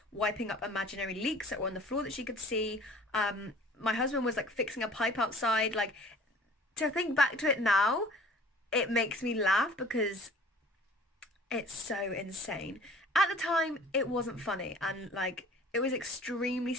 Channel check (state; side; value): normal; both; correlation 0.49